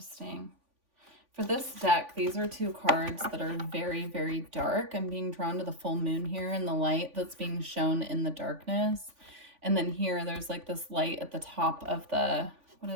For this deck, these are 2 cards that are very, very dark. I'm being drawn to the full moon here and the light that's being shown in the darkness. And then here, there's like this light at the top of the, what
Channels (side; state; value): left; late; 3.5 ms